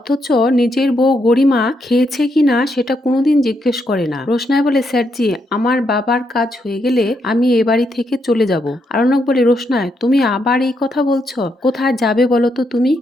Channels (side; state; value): both; normal; correlation 0.79